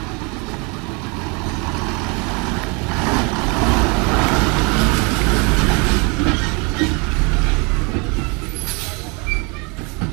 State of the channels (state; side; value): quieter; left; 31.0 dB